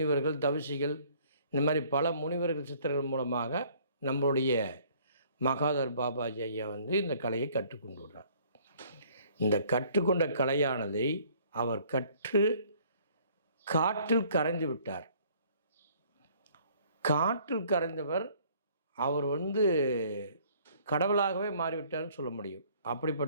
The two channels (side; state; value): both; inverted; correlation -0.58